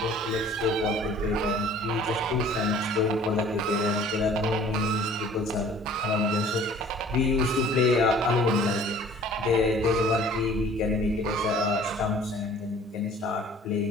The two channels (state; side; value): normal; both; correlation 0.50